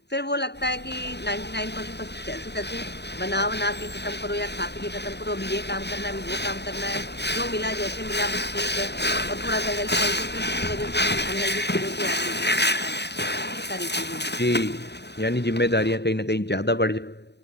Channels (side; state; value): right; late; 0.49 ms